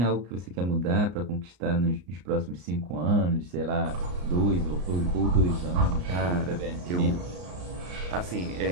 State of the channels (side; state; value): left; late; 34 ms